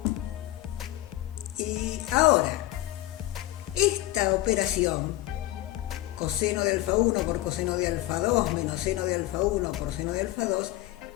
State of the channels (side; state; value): right; quieter; 16.2 dB